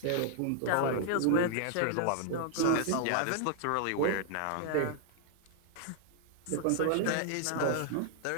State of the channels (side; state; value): both; different; correlation 0.00